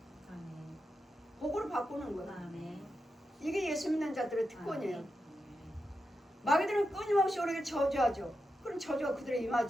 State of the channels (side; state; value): both; normal; correlation 0.88